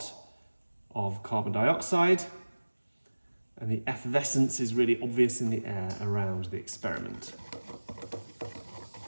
of carbon dioxide, and the effervescence is really obvious in the air around the experiment. A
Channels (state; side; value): inverted; both; correlation -1.00